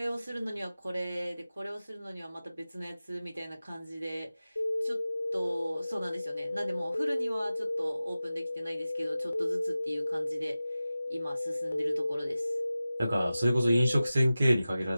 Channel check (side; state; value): both; inverted; correlation -0.95